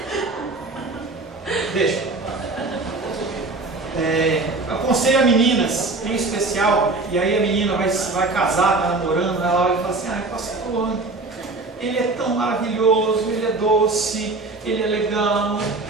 Deixa. Aconselho a meninas, em especial, e aí a menina vai casar, está namorando, ela olha e fala assim: ai, pastor, ele é tão maravilhoso, ele é doce, ele é legal,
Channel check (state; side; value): quieter; left; 3.4 dB